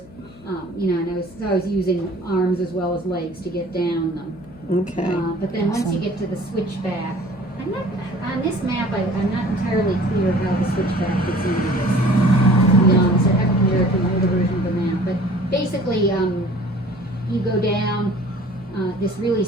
You know, and I was using arms as well as legs to get down them. Okay. But then once you get to the switchback, I'm not on this map. I'm not entirely clear how the switchback fits into this. To be honest, I haven't compared it to an older version of the map. But basically, you go down this really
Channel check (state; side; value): noise; left; hum, 20 dB below the sound